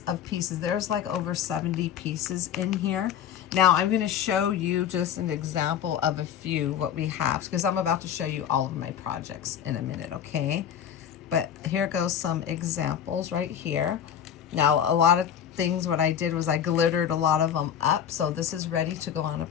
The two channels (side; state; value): right; quieter; 9.2 dB